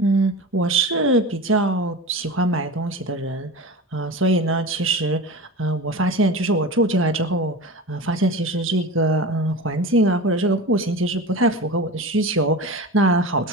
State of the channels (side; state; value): both; normal; correlation 0.30